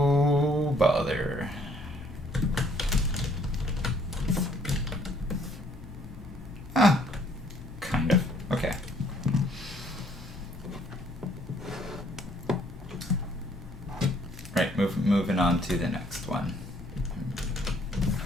bother. Kind of. Okay. Right, moving on to the next one.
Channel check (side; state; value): both; normal; correlation 0.63